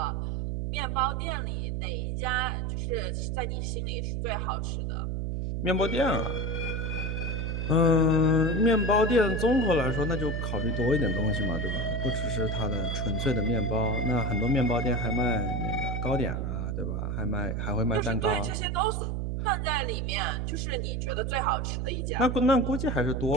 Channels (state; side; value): noise; right; hum, 1 dB below the sound